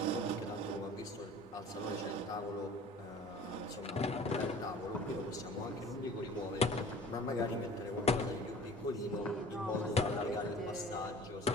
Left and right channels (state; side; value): normal; both; correlation 0.45